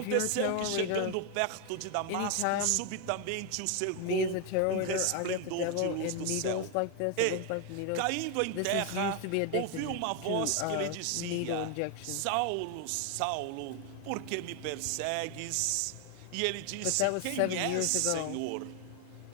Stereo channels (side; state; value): both; different; correlation 0.01